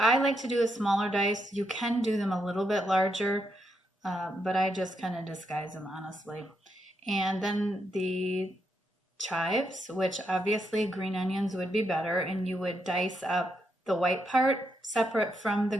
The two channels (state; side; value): normal; both; correlation 0.80